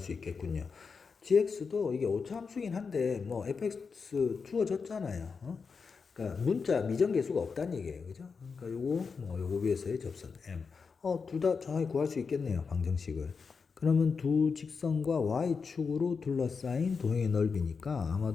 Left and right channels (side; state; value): right; quieter; 5.3 dB